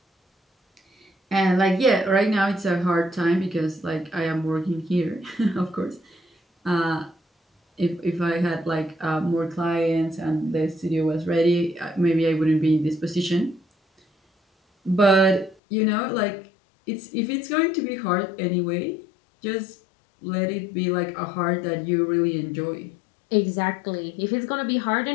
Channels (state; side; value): drops out; right; at 15.6 s